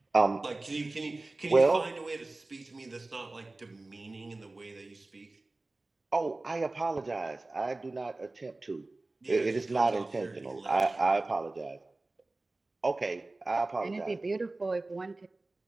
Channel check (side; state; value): left; quieter; 3.1 dB